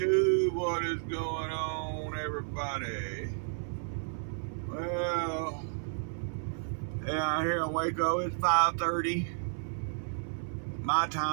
What is going on, everybody? Well, yeah, here in Waco, it's 5:30 my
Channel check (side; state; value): left; silent; 56 dB below the other